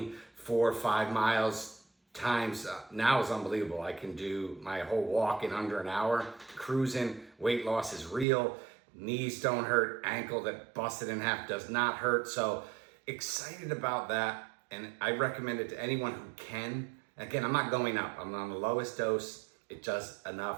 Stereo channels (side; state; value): left; drops out; at 8.2 s